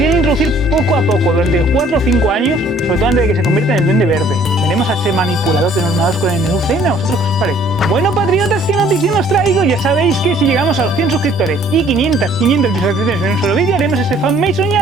introducir poco a poco, durante 4 o 5 años, sobre todo antes de que se convierta en el Duende Verde. Veremos a ese manipulador de Norman Oscorp en el UCM, ¿a vosotros qué os parece? Bueno, patriotas, ¿qué noticia nos traigo? Ya sabéis que si llegamos a los 100 suscriptores y 500 visualizaciones en un solo vídeo, haremos ese fanmade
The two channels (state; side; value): normal; both; correlation 0.58